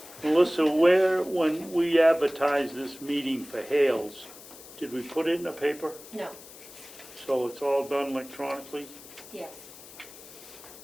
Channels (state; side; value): noise; left; hiss, 18 dB below the sound